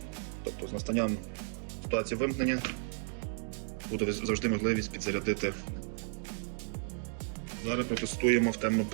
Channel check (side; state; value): left; silent; digital silence